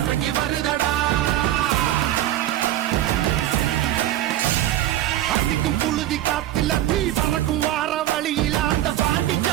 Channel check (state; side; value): quieter; left; 13.3 dB